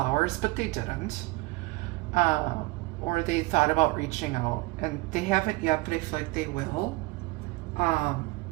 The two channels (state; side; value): quieter; left; 22.7 dB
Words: but they didn't. Or they thought about reaching out, and they haven't yet, but I feel like they will